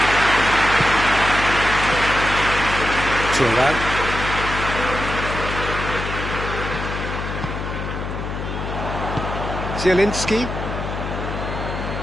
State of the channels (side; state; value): left; noise; hum, 5 dB below the sound